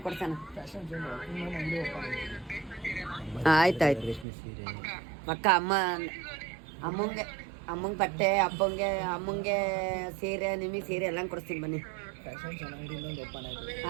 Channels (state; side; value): drops out; left; at 4.2 s